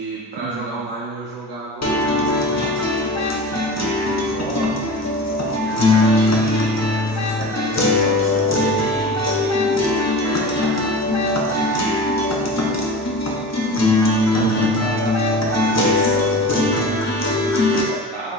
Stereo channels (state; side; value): normal; both; correlation 0.34